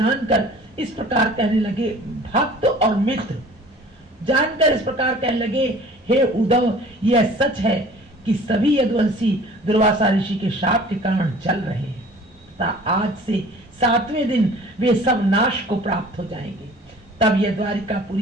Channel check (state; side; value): normal; both; correlation 0.47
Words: इस प्रकार कहने लगे। भक्त और मित्र जानकर इस प्रकार कहने लगे, हे उद्धव, यह सच है कि सभी यदुवंशी दुर्वासा ऋषि के शाप के कारण जल रहे हैं तथा आज से 7वें दिन वे सब नाश को प्राप्त हो जाएंगे। तब यह